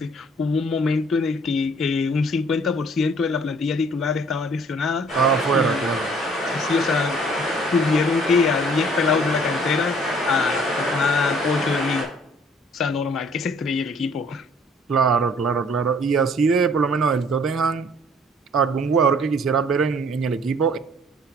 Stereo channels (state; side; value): normal; both; correlation 0.57